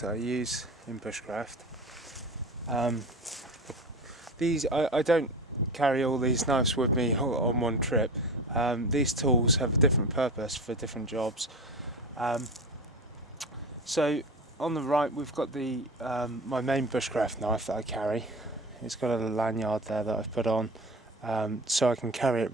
I use in bushcraft. I don't carry all these knives with me on one trip. These tools have a different purpose for different jobs. So on the right we've got the my main bushcraft knife that I carry. It's got a lanyard there that I've put on so I can carry it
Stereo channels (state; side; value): normal; both; correlation 0.31